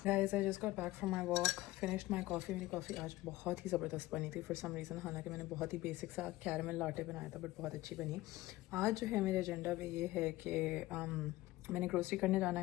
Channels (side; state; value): right; quieter; 17.7 dB